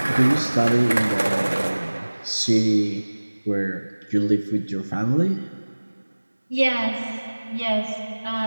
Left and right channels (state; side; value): inverted; both; correlation -1.00